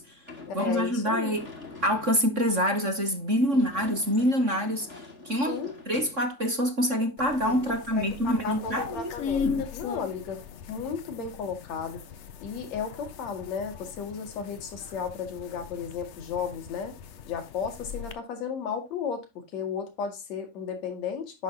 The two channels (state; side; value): late; left; 3.6 ms